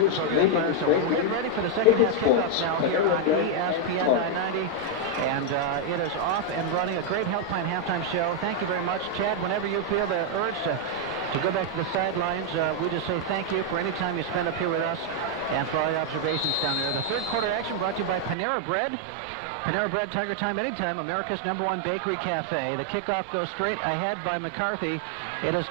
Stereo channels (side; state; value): left; drops out; at 18.4 s